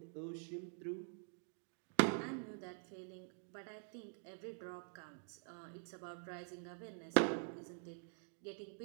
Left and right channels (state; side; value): silent; left; digital silence